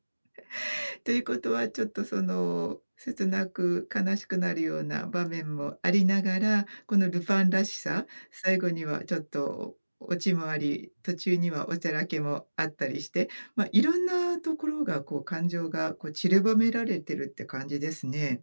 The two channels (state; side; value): inverted; both; correlation -1.00